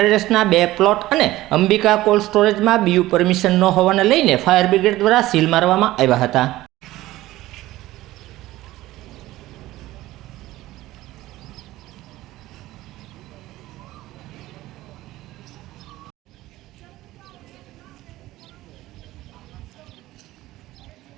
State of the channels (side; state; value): left; quieter; 16.7 dB